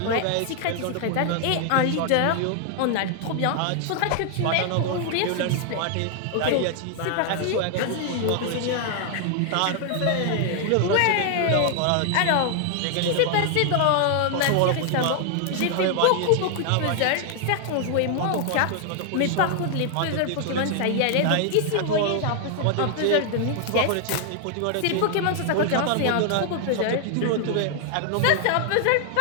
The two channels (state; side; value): different; both; correlation 0.00